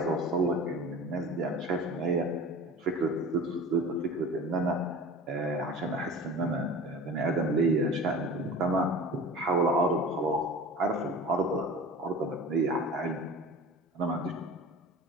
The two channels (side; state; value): both; normal; correlation 0.37